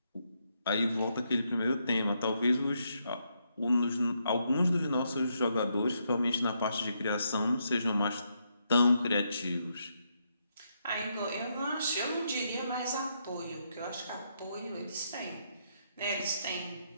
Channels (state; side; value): inverted; both; correlation -0.78